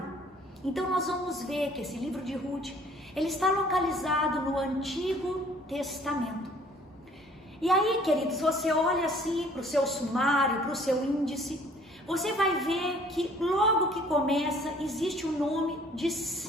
Então nós vamos ver que esse livro de Ruth, ele está localizado no Antigo Testamento. E aí, queridos, você olha assim para o seu sumário, para o seu índice, você vai ver que logo que começa existe o nome de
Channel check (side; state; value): both; normal; correlation 0.56